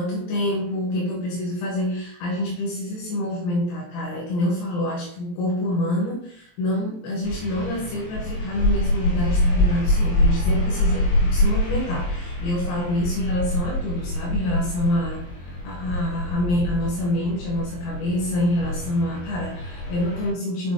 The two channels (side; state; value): right; late; 23 ms